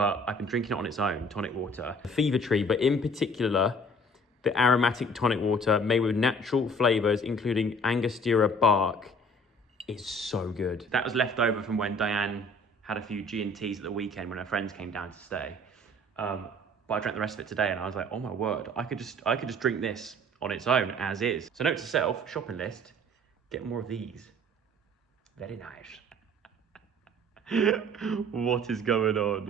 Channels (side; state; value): both; normal; correlation 0.52